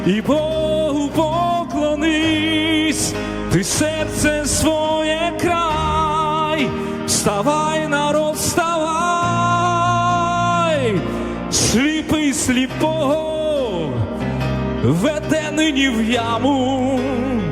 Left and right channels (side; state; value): both; identical; correlation 1.00